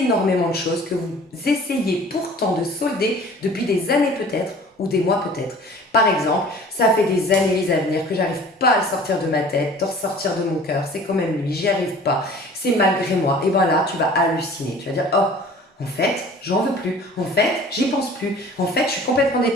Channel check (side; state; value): both; normal; correlation 0.46